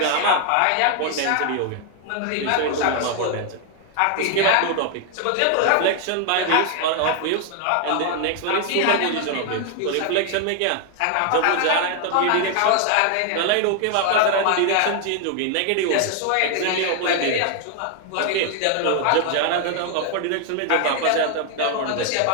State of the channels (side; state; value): both; different; correlation 0.00